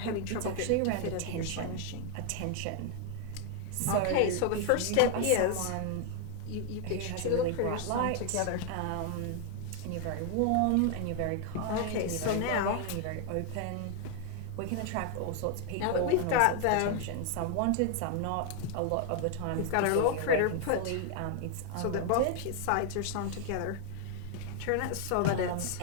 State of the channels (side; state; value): both; different; correlation 0.00